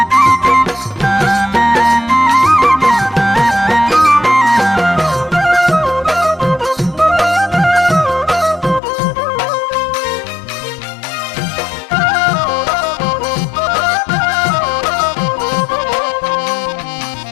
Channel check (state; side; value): drops out; right; at 8.8 s